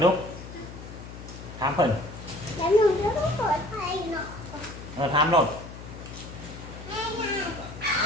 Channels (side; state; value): left; noise; hum, 13 dB below the sound